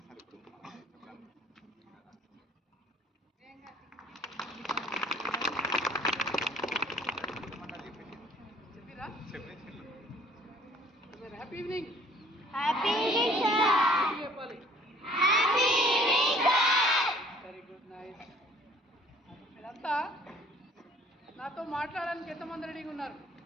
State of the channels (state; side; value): normal; both; correlation 0.56